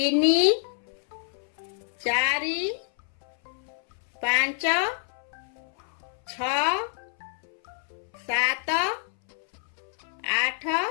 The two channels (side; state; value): right; silent; 60 dB below the other